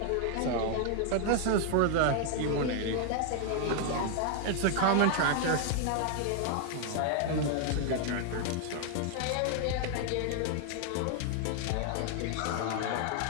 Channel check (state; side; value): different; both; correlation 0.00